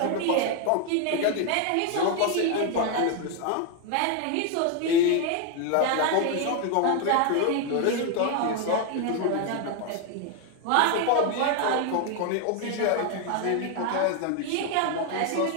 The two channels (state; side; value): different; both; correlation 0.01